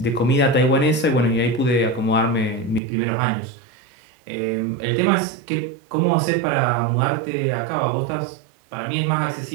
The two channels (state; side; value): drops out; left; at 2.8 s